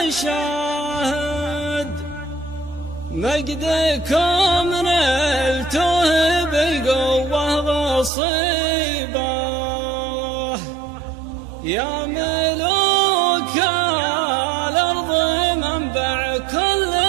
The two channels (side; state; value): left; drops out; at 8.1 s